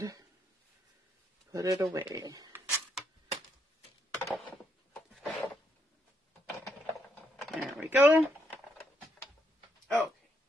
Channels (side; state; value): both; normal; correlation 0.76